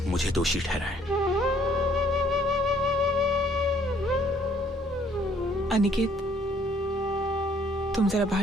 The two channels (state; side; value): normal; both; correlation 0.62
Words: मुझे दोषी ठहराएं। अनिकेत, तुम जरा बाहर